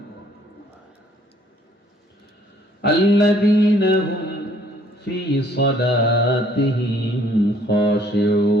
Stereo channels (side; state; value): both; normal; correlation 0.61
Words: الذين هم في صلاتهم